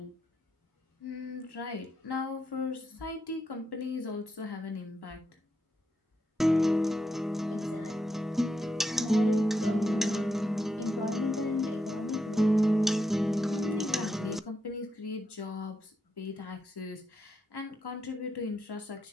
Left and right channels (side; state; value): both; normal; correlation 0.83